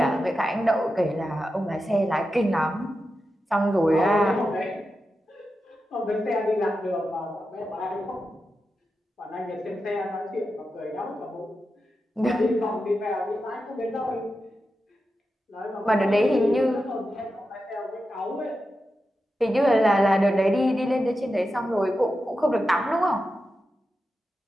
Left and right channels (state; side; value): normal; both; correlation 0.90